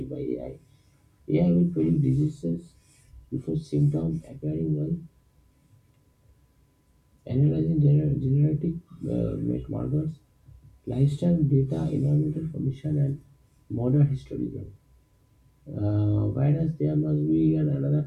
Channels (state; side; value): identical; both; correlation 1.00